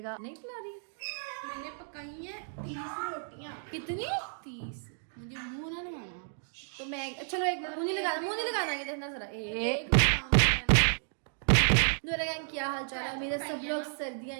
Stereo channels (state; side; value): silent; left; digital silence